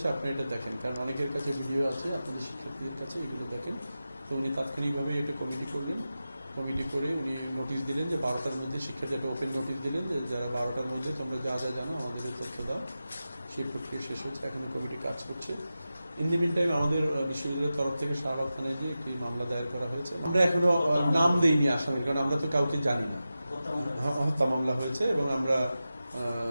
আপনি এটা দেখেন, কারণ অনেকের কাছে ভিডিও আছে, আপনাদের শিক্ষার্থীদের কাছে এগুলো দেখেন। তো উনি তাৎক্ষণিকভাবে এটা কমিটি করলেন, কমিটি করে উনি নোটিশ দিলেন যে 12টার মধ্যে শিক্ষার্থী একটা ওপেন নোটিশ দিলেন যে যারা 12টার মধ্যে তোমরা যা যা জানো আমাদের তথ্য দাও। সেই প্রক্রিয়া শেষ হচ্ছে, এখন কমিটি কাজ করছে। ইন দি মিন টাইম আমাদের বিশ্ববিদ্যালয়ের তরফ থেকে শাহবাগ থানায় যে একটি মামলা দায়ের করা হয়েছে। আমরা এখনো নাম দেইনি আসামির, কারণ আমরা তো কাউকে জানি না। হত্যা মামলা হয়েছে এবং আমরা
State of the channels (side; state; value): both; inverted; correlation -0.93